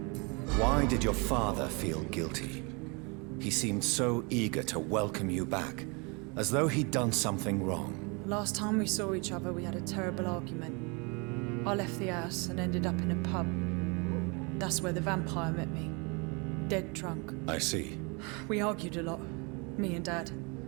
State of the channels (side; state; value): left; quieter; 30.9 dB